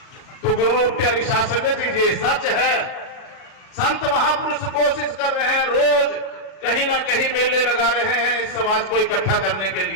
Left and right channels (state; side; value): late; right; 37 ms